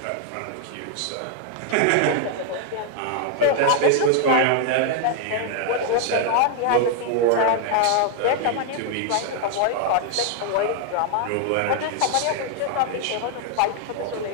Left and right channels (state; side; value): different; both; correlation 0.00